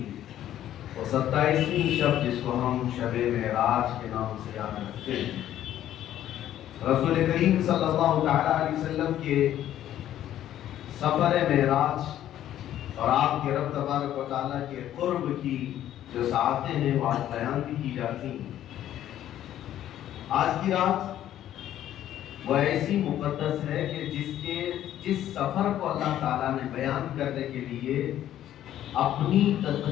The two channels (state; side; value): quieter; right; 11.9 dB